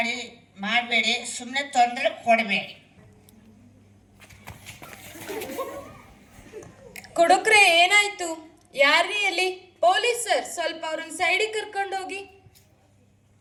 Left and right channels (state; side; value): identical; both; correlation 1.00